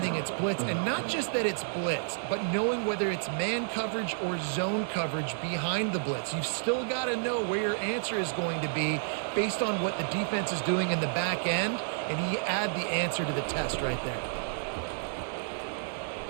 it's blitz, and not just that it's blitz, but knowing whether it's man coverage or zone coverage behind the blitz. You've still got to know where your answer is going to be based on what the defense is doing in the back end, and he add the answer to the test right there.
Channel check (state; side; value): silent; left; digital silence